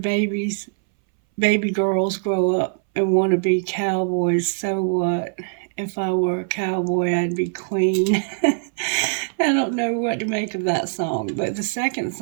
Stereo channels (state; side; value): silent; left; 62 dB below the other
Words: girls grow up and want to be cowboys, so what? If I were a cowboy, I'd be queen. I don't know what to make of that song, but the second